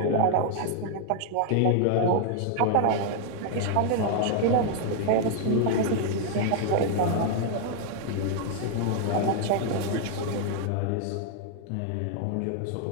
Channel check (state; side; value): different; both; correlation 0.00